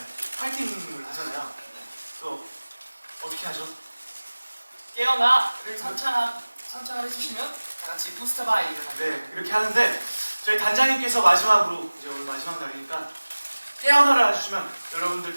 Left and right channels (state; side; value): inverted; both; correlation -1.00